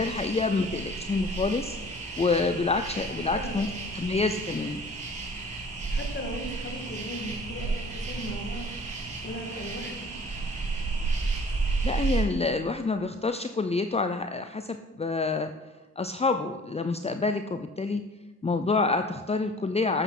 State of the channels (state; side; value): normal; both; correlation 0.49